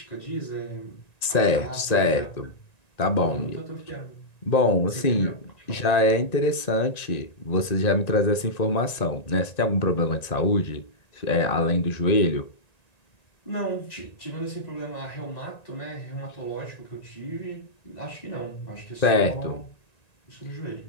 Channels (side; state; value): right; late; 1.9 ms